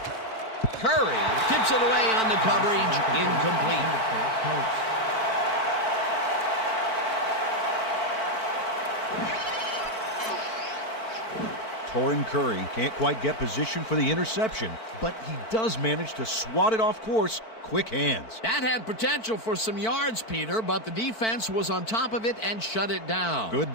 Curry tips it away on the coverage, incomplete. Torrin Curry can't quite get position for the interception, but he does manage to swat it off course. Quick hands. That had potential for some yards, Peter, but the defense was on top of it and shut it down. Good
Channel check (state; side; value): late; right; 4.5 ms